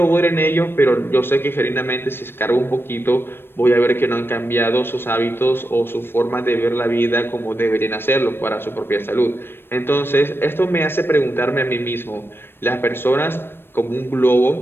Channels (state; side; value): late; right; 0.10 ms